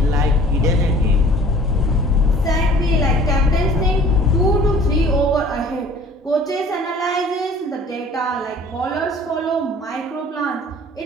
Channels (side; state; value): both; normal; correlation 0.50